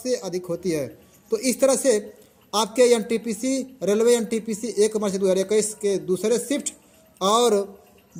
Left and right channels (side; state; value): both; identical; correlation 1.00